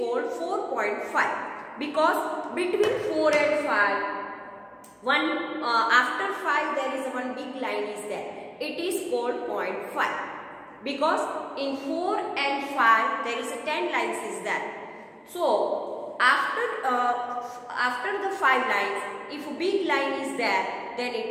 4.5. Because between 4 and 5, after 5 there is one big line is there. It is called 0.5. Because in 4 and 5 there is a 10 lines is there. So after the 5 lines, if a big line is there, then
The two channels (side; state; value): both; identical; correlation 1.00